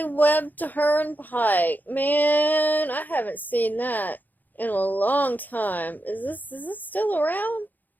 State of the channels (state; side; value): late; right; 0.084 ms